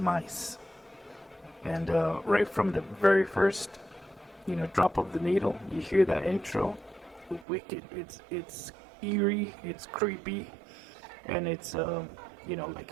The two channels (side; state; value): left; drops out; at 7.5 s